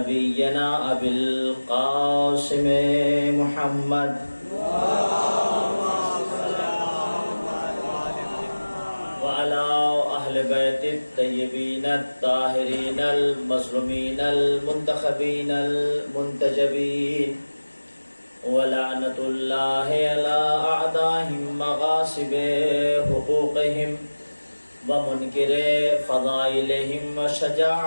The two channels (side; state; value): both; inverted; correlation -1.00